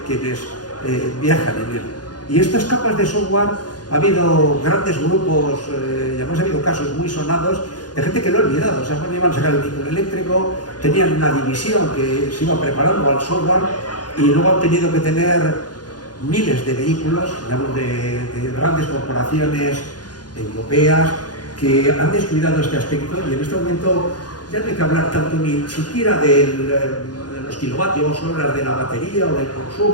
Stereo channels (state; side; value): late; right; 0.69 ms